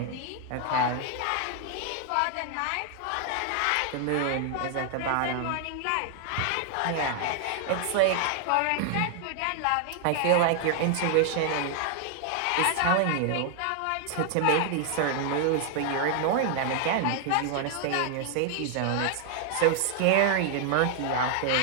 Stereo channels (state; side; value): different; both; correlation 0.00